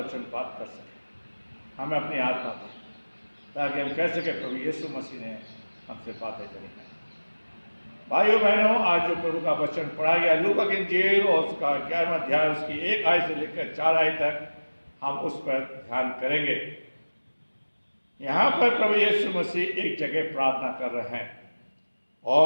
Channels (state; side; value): inverted; both; correlation -1.00